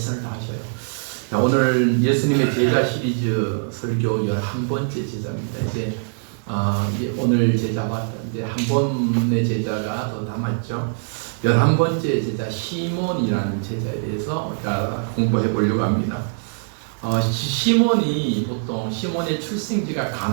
다하셔요. 자, 오늘 예수님의 제자 시리즈 설교 11번째 제자입니다. 이제 오늘 제자가 이제 한 번의 제자가 더 남았죠. 11번째 제자 시몬이라는 제자에 대해서 우리가 공부해 보려고 합니다. 시몬이 보통 시몬의 출생지가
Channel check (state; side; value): silent; left; 64 dB below the other